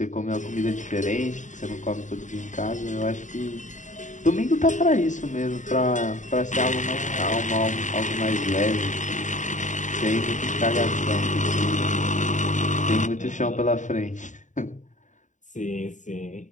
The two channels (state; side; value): late; right; 0.36 ms